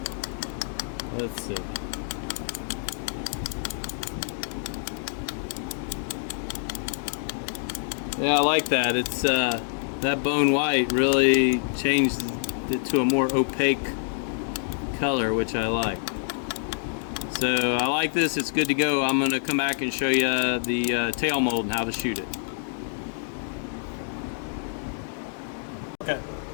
Let's see. Yeah, I like that. It's that Bone White really changed it to a more opaque color, which I like. So I like this. It's good to go. I'm going to come back and show you the tail mold and how to shoot it. Okay.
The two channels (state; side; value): silent; right; digital silence